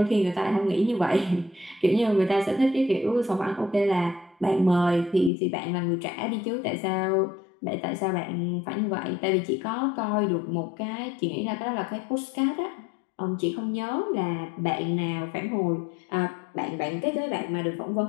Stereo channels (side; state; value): right; drops out; at 5.3 s